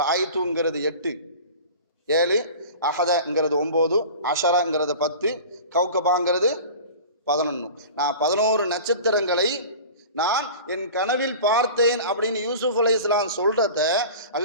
ரஐத்துங்கிறது 8, 7, அஹதங்கிறது 9, அஷரங்கிறது 10, கௌகபாங்கிறது 11. நான் 11 நட்சத்திரங்களை நான் என் கனவில் பார்த்தேன் அப்படின்னு யூசுப் அலைஹிஸ்ஸலாம் சொல்றத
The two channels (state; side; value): inverted; both; correlation -0.38